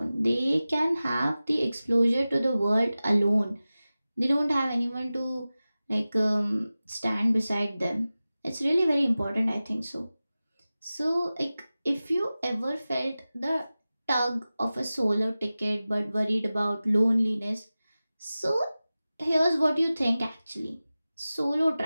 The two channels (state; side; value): inverted; both; correlation -0.96